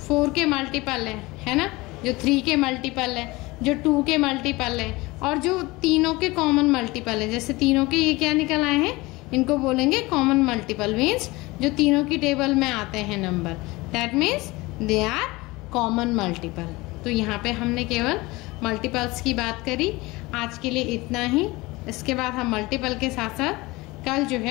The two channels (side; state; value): right; quieter; 22.0 dB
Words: 4 के मल्टीपल है ना, जो 3 के मल्टीपल है, जो 2 के मल्टीपल है और जो तीनों के कॉमन मल्टीपल है। जैसे तीनों के ये क्या निकल आए हैं, इनको बोलेंगे कॉमन मल्टीपल, मीन्स जो तीनों की टेबल में आते हैं number, that means they are common multiple. तो यहाँ पे हमने केवल मल्टीपल्स की बात करी। आज के लिए इतना ही। इसके बाद हम मल्टीपल के साथ साथ कल जो